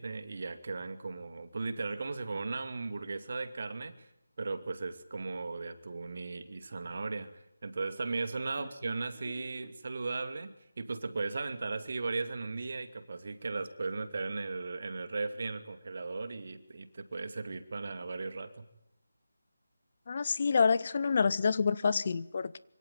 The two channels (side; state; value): both; inverted; correlation -0.88